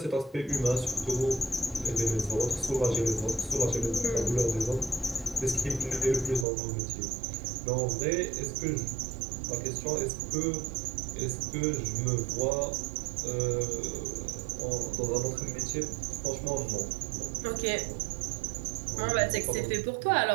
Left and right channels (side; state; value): left; drops out; at 6.5 s